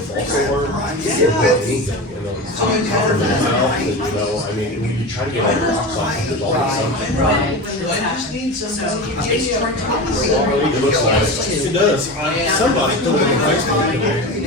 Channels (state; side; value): normal; both; correlation 0.26